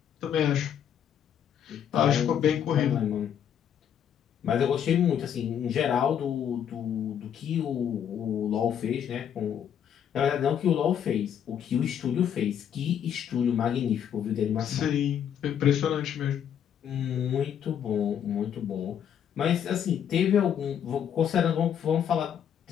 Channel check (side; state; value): right; quieter; 9.0 dB